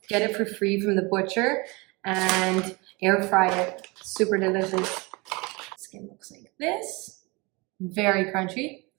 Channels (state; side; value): quieter; left; 26.2 dB